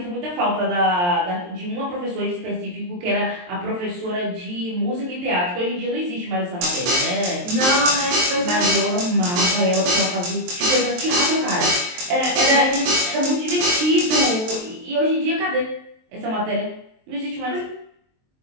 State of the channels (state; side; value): late; left; 23 ms